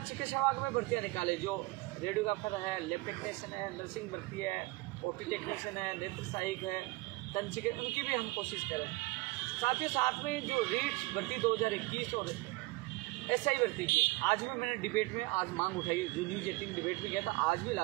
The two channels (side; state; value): left; quieter; 22.3 dB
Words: चिकित्सा विभाग में भर्तियाँ निकाले, जो रेडियोग्राफर है, लैब टेक्नीशियन है, नर्सिंग भर्ती है, OT टेक्नीशियन है, नेत्र सहायक है, दंत चिकित्सक, उनकी भी हम कोशिश करें। साथ ही साथ में जो रीट भर्ती 2021 और SI भर्ती की, आज भी मैंने डिबेट में आज मांग उठाई, जो न्यूज़ 18 डिबेट में गया था, आज भी